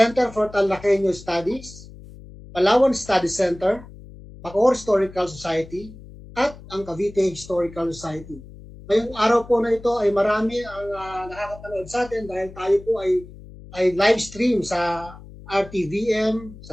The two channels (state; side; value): noise; left; hum, 18 dB below the sound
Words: for Talakeno Studies, Palawan Study Center, Bacoor Historical Society, at ang Cavite Historical Society. Ngayong araw po na ito ay marami ang nakakapanood sa atin dahil tayo po ay live stream sa RTVM,